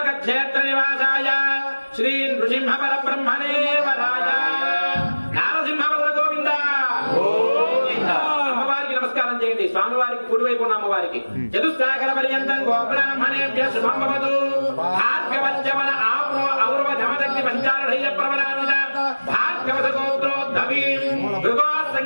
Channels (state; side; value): inverted; both; correlation -1.00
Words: క్షేత్ర నివాసాయ శ్రీ నృసింహ పరబ్రహ్మణే వరాయ నారసింహవర గోవింద. అమ్మవారికి నమస్కారం చేయండి. స్వామివారికి కుడివైపు ఉన్న అమ్మవారికి. చతుస్సాగర పర్యంతం గోబ్రాహ్మణేభ్య శుభమవతు. భార్గవజ్జవన ఆప్రో ఔరవ జమదగ్ని పంచారుఢయ్య ప్రబలాన్విత భార్గవత గోత్రోద్ధవీం భృగో